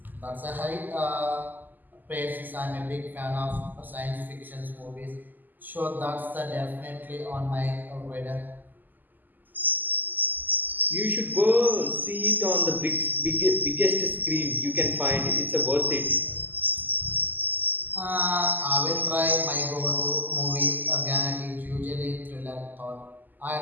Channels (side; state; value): left; late; 0.086 ms